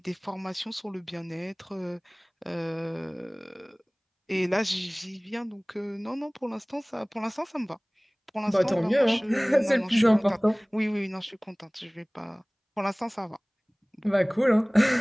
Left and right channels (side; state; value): both; identical; correlation 1.00